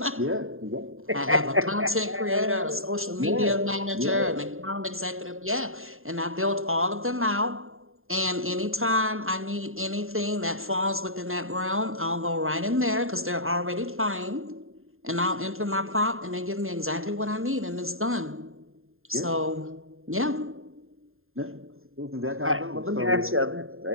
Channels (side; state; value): left; late; 0.61 ms